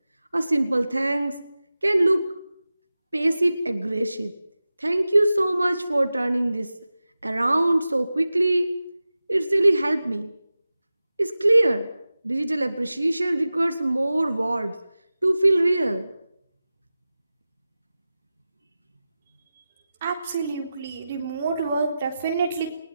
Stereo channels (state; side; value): inverted; both; correlation -0.95